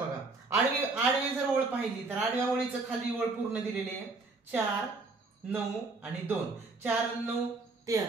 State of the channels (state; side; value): quieter; left; 3.7 dB